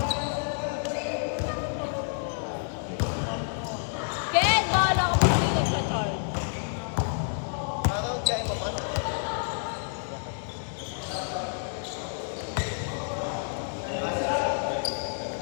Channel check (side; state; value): right; silent; 58 dB below the other